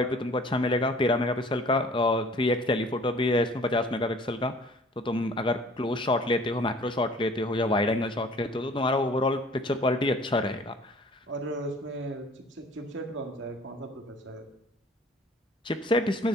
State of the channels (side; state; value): both; normal; correlation 0.51